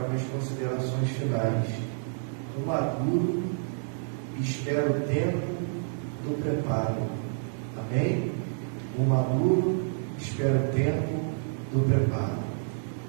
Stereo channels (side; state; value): left; silent; digital silence